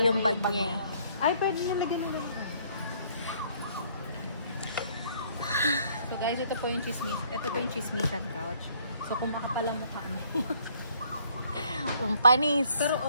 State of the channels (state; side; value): inverted; both; correlation -0.63